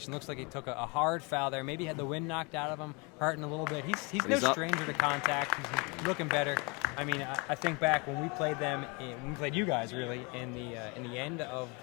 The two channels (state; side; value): quieter; right; 29.9 dB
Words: Looks like he took a hard foul there. Maybe had the wind knocked out of him, hurting a little bit. He's no stranger to contact. He's looking better. I mean, I think back when we played them, when we played you guys really in the end of